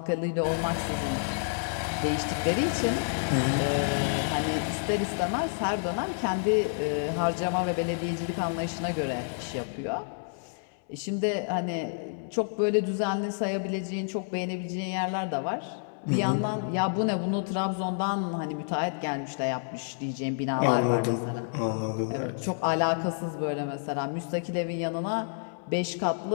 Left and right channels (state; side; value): silent; right; 58 dB below the other